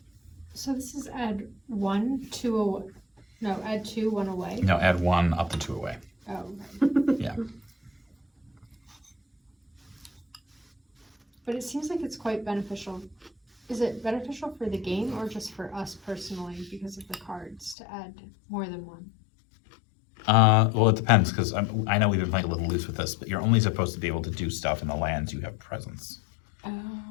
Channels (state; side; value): drops out; right; at 17.8 s